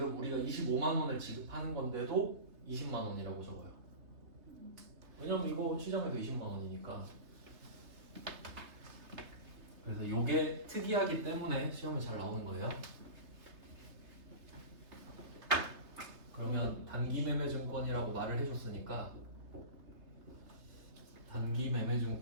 우리가 25만 원을 지급하는 건데도 20만 원이라고 적어요. 왜냐면 이거 시장에서 20만 원이니까. 그래서 이게 특이하기 때문에 시험에 잘 나오는 거예요. 그러면 단기 매매 증권이라고 말을 해줬으니까 단기 매매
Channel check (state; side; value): late; left; 3.3 ms